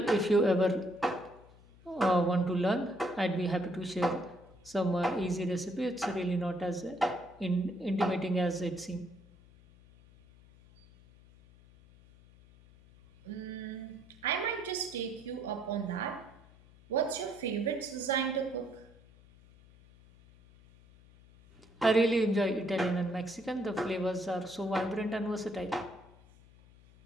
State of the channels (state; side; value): noise; left; hum, 25 dB below the sound